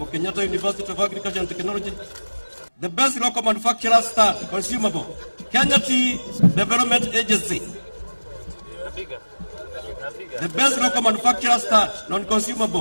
Kenyatta University of Agriculture and Technology. The best local manufacturer stud, consumable, Kenya Tea Development Agency. The best local manufacturer stud,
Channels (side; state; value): both; inverted; correlation -1.00